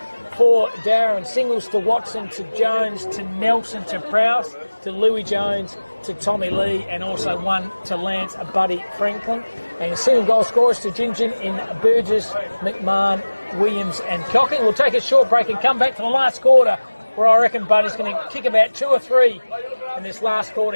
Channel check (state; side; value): inverted; both; correlation -1.00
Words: for Dowerin. Singles to Watson, to Jones, to Nelson, to Prowse, to Louis Jones, to Tommy Lee, and also one to Lance Buddy Franklin. And single goal scorers to Gingin in Burgess, McMahon, Williams and Cocking. We'll take a short break and come back to the last quarter, where I reckon Buddy's going to kick about 2 or 3 in this last